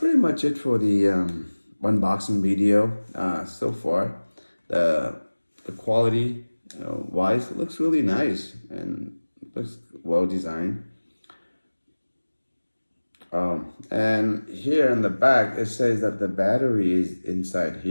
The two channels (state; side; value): inverted; both; correlation -1.00